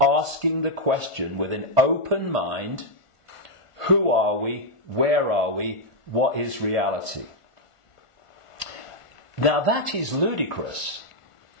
the question with an open mind: who are we? Where are we? What is reality? Now that is ludicrous.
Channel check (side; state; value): right; late; 1.4 ms